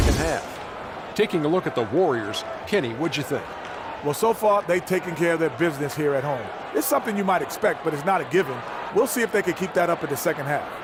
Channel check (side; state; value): both; identical; correlation 1.00